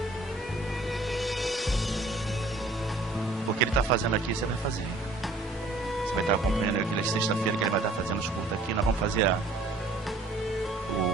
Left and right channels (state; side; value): quieter; left; 3.1 dB